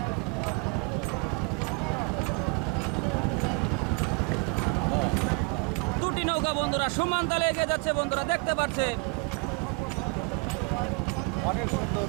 সমান তালে এগিয়ে যাচ্ছে বন্ধুরা, দেখতে পাচ্ছেন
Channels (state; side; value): quieter; left; 31.5 dB